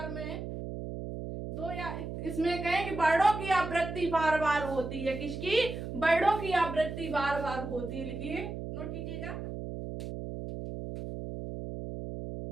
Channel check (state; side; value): noise; right; hum, 7 dB below the sound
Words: में दो, या इसमें कहें कि वर्णों की आवृत्ति बार बार होती है। किसकी? वर्णों की आवृत्ति बार बार होती है। लिखिए, नोट कीजिएगा।